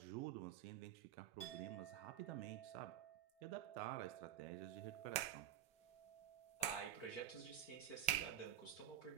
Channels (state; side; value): quieter; left; 11.1 dB